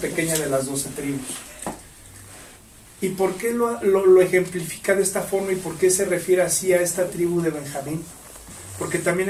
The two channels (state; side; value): identical; both; correlation 1.00